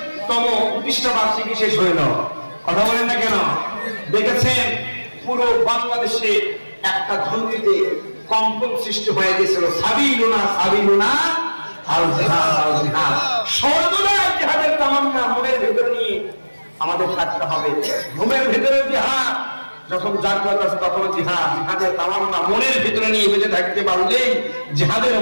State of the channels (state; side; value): inverted; both; correlation -1.00